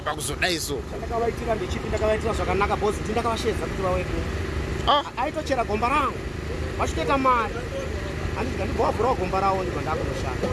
pakuzodaiso chandakavaitira ndechipi ndakavaitira zvakanaka bhosi ndi ndakavashedza kuti vawedu aitochera gomba rangu vachitoita mari handiti ndibovhurawo gomba ravo ndibva ndakunoshanda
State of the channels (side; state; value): both; identical; correlation 1.00